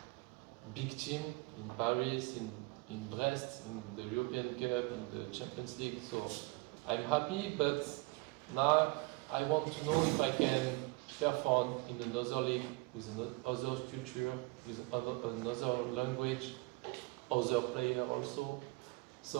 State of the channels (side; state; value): left; quieter; 25.6 dB